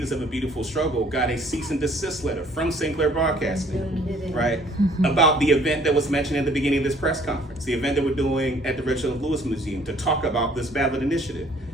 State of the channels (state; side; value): normal; both; correlation 0.58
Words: of a Beautiful Struggle, got a cease and desist letter from Sinclair Broadcasting, right, about the event that was mentioned at the beginning of this press conference, the event that we're doing at the Reginald Lewis Museum to talk about this ballot initiative.